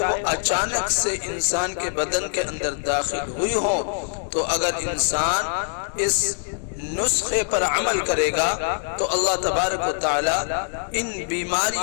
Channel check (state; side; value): silent; right; 61 dB below the other